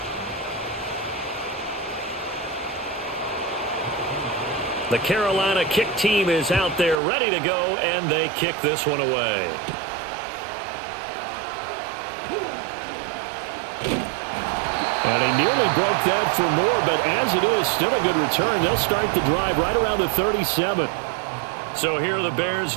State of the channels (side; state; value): left; drops out; at 7.0 s